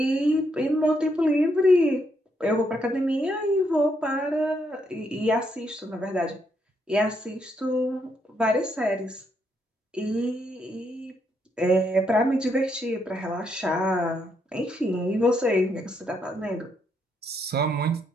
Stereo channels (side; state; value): both; normal; correlation 0.76